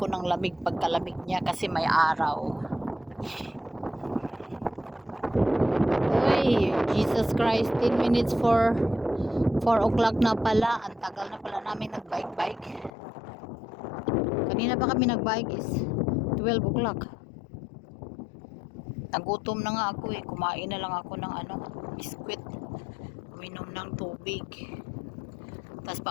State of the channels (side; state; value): right; drops out; at 12.9 s